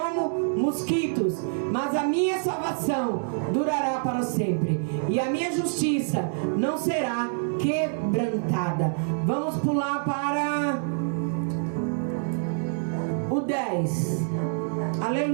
mosquitos, mas a minha salvação durará para sempre, e a minha justiça não será quebrantada. Vamos pular para o 10.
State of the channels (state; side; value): silent; left; digital silence